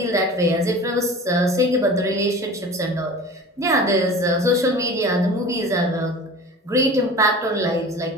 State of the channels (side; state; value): both; normal; correlation 0.38